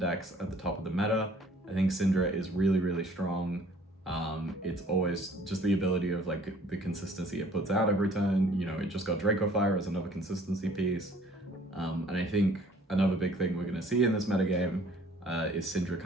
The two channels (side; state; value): both; normal; correlation 0.55